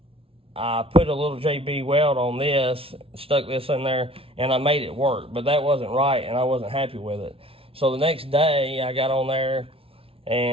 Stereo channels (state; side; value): late; left; 0.27 ms